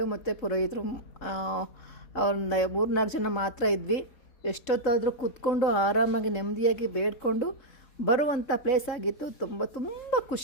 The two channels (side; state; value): right; late; 3.7 ms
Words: ಮತ್ತು ಪುರೋಹಿತರು ಒಂದು 3-4 ಜನ ಮಾತ್ರ ಇದ್ವಿ. ಎಷ್ಟೊತ್ತಾದರೂ ಕೂತ್ಕೊಂಡು ಆರಾಮಾಗಿ ನೆಮ್ಮದಿಯಾಗಿ ಬೇಡ್ಕೊಂಡು ಬರುವಂಥ ಪ್ಲೇಸ್ ಆಗಿತ್ತು. ತುಂಬ